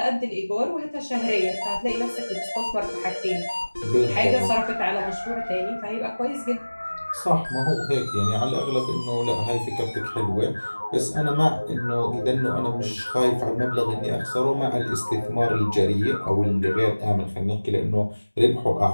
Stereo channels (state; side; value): inverted; both; correlation -1.00